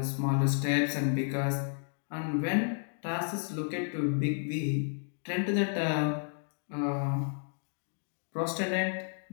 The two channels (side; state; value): right; silent; 56 dB below the other